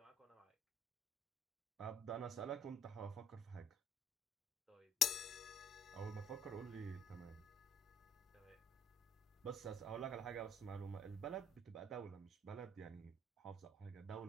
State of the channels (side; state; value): both; normal; correlation 0.61